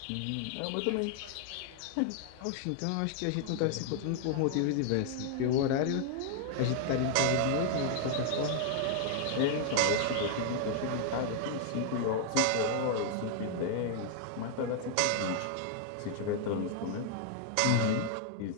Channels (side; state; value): both; different; correlation 0.00